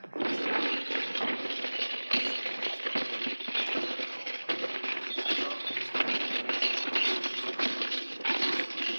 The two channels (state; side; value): inverted; both; correlation -1.00